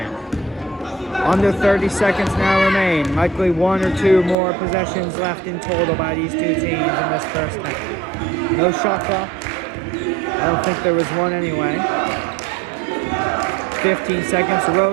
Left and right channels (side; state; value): left; drops out; at 4.4 s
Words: Under 30 seconds now remain. Likely 1 or 2 more possessions left in total by these 2 teams in this first half. No shot clock. I don't think there was one anyway. 15 seconds.